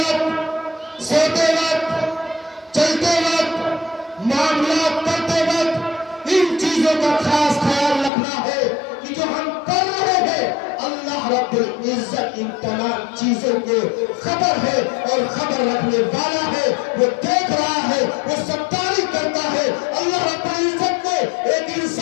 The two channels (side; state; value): right; drops out; at 8.1 s